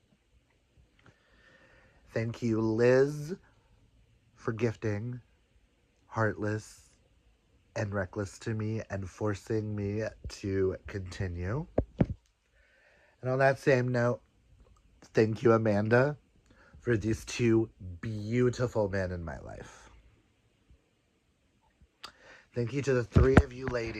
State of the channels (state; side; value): identical; both; correlation 1.00